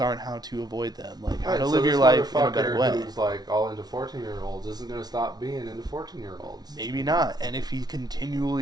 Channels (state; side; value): late; left; 0.19 ms